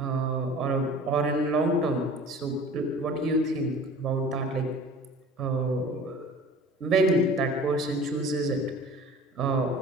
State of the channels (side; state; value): both; normal; correlation 0.43